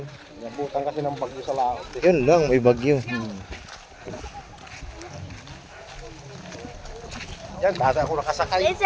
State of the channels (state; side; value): identical; both; correlation 1.00